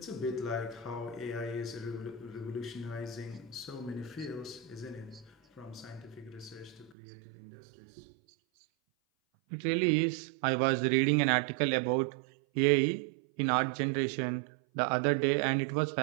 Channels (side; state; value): left; drops out; at 7.0 s